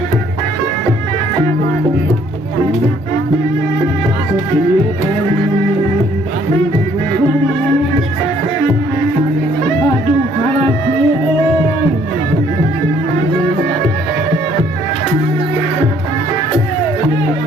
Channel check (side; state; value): both; normal; correlation 0.63